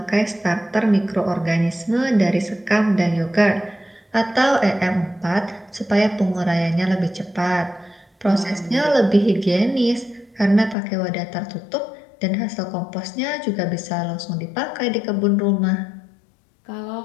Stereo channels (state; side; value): drops out; right; at 10.8 s